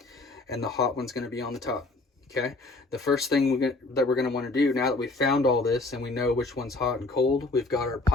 and the hot one's gonna be on the top, okay? The first thing that we're gonna wanna do now that we've found all this and we know which one's hot and cold, we've got our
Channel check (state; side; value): quieter; right; 3.2 dB